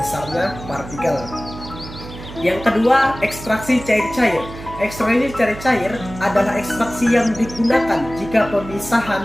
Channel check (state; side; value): noise; right; hum, 13 dB below the sound